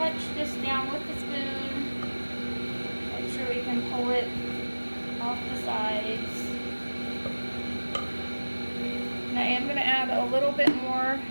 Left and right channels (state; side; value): inverted; both; correlation -1.00